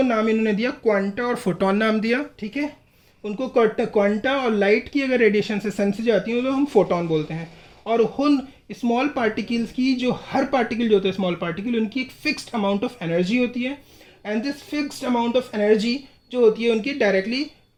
नाम इन्होंने दिया क्वांटा और फोटोन नाम दिया, ठीक है। उनको क्वांटा, और लाइट की अगर रेडिएशन से सन से जाती है तो हम फोटोन बोलते हैं। और उन स्मॉल पार्टिकल्स की, जो हर पार्टिकल जो होता है स्मॉल पार्टिकल, उनकी एक फिक्स्ड अमाउंट ऑफ एनर्जी होती है, and this fixed amount of energy जो होती है उनकी डायरेक्टली,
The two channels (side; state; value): both; identical; correlation 1.00